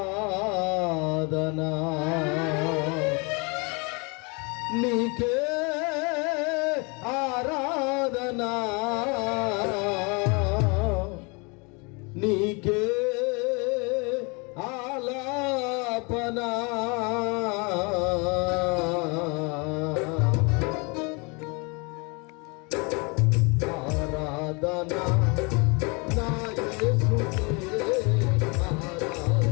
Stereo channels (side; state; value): right; quieter; 30.6 dB